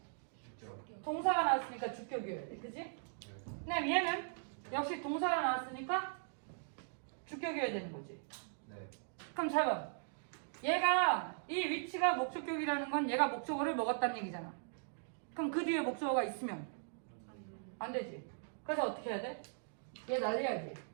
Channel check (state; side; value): silent; left; digital silence